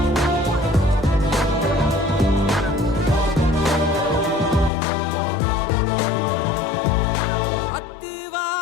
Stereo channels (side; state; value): right; drops out; at 4.7 s